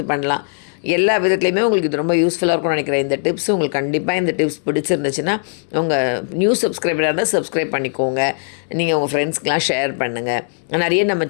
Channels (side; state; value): right; silent; 58 dB below the other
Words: பண்ணலாம். எல்லா விதத்துலையுமே உங்களுக்கு இது ரொம்ப யூஸ்ஃபுல்லாக இருக்கும்னு நினைக்கிறேன். இந்த டிப்ஸ் உங்களுக்கு கண்டிப்பாக இந்த டிப்ஸ் பிடிச்சிருந்துச்சுன்னா உங்கள் நியூ சப்ஸ்கிரைபராக இருந்தால் சப்ஸ்கிரைப் பண்ணிக்கோங்க. நீங்கள் உங்கள் ஃப்ரெண்ட்ஸ்க்கெலாம் ஷேர் பண்ணுங்கள். நிறைய நம்ம